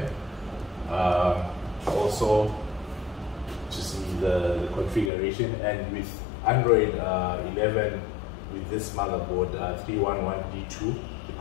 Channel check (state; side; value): drops out; right; at 5.1 s